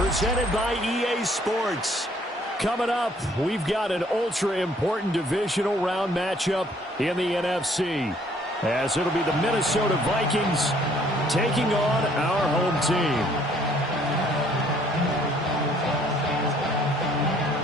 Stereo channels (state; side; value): normal; both; correlation 0.61